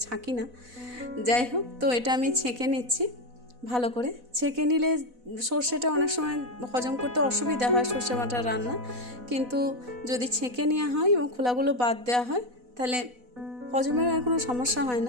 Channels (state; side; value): late; left; 4.1 ms